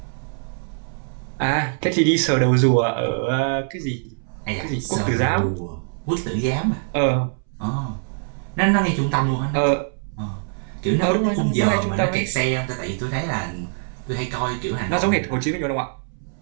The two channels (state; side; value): silent; left; 63 dB below the other